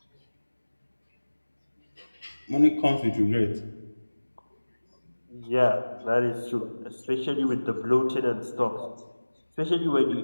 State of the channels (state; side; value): inverted; both; correlation -1.00